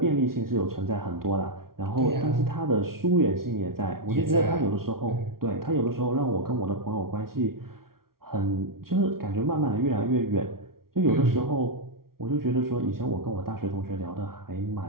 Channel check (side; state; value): left; late; 0.93 ms